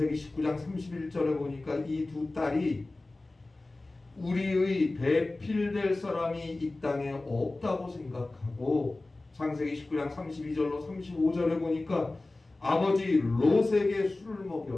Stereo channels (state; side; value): quieter; right; 3.0 dB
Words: 19장 31절에 보니까 이 두 딸이 우리의 배필될 사람이 이 땅에 없다고 생각하고 창세기 19장 32절로 35절에 보니까 아버지 롯에게 술을